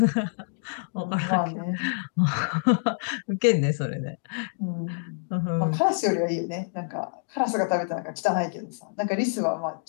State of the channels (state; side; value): silent; right; digital silence